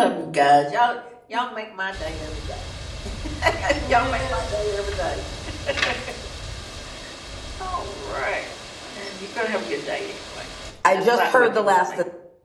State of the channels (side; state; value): both; identical; correlation 1.00